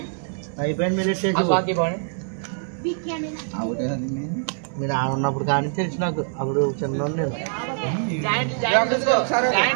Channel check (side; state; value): left; silent; digital silence